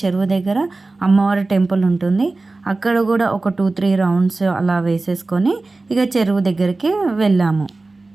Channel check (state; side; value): quieter; left; 3.3 dB